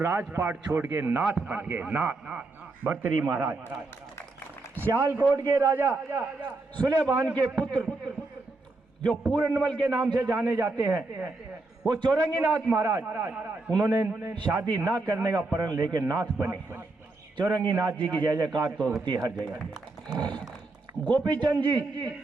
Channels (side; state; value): left; quieter; 3.3 dB